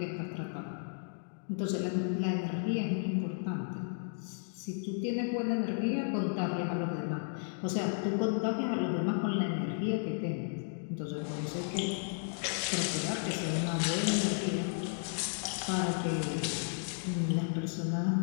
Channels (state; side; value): silent; right; digital silence